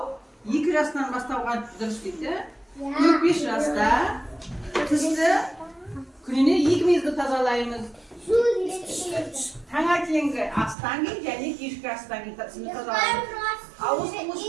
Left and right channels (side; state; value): left; drops out; at 10.8 s